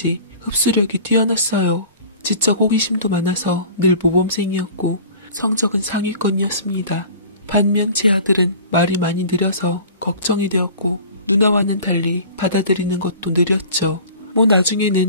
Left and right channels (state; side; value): inverted; both; correlation -0.43